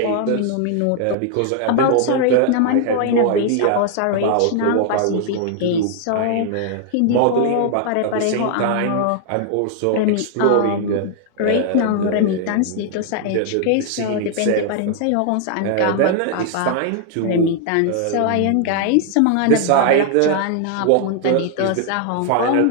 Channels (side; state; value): both; different; correlation 0.00